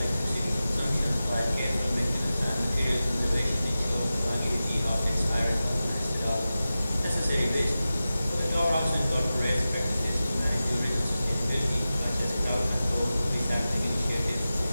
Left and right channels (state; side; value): inverted; both; correlation -0.94